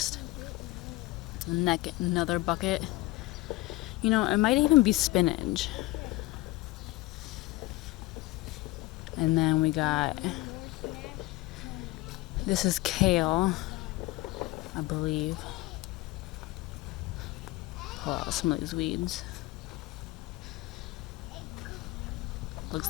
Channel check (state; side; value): quieter; right; 19.8 dB